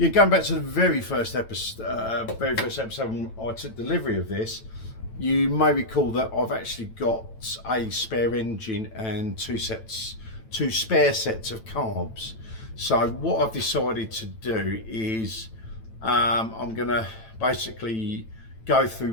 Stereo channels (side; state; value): right; late; 9.0 ms